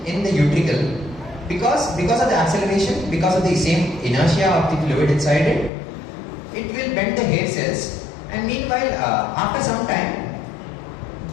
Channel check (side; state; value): right; drops out; at 5.7 s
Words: in the utricle because of the acceleration, because of the same inertia of the fluid inside it. It will bend the hair cells, and meanwhile, after some time,